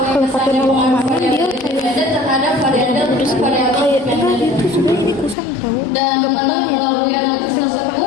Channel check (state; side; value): drops out; right; at 5.4 s